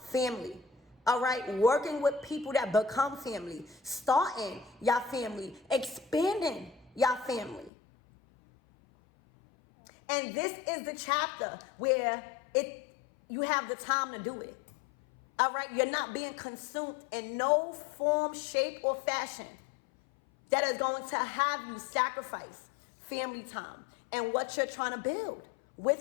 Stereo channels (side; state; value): right; drops out; at 7.7 s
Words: family. All right, working with people that become family, starting your family, expanding your family. And this is the chapter where you have the time to do it. All right, you're not being consumed in no form, shape, or fashion that is going to have you sacrifice family time and what you're trying to build